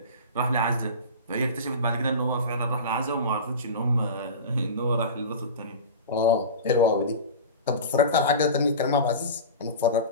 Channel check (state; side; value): inverted; both; correlation -0.30